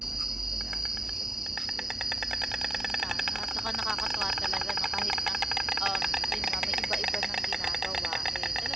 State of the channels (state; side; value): normal; both; correlation 0.92